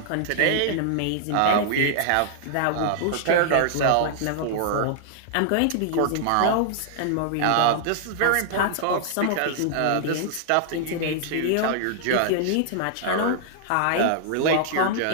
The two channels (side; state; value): both; different; correlation -0.01